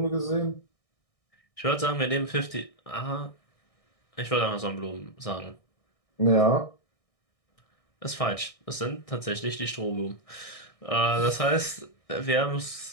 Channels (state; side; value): late; right; 1.6 ms